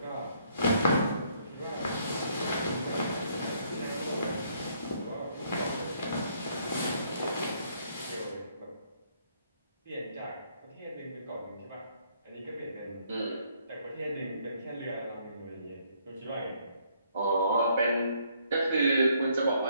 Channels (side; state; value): both; inverted; correlation -0.68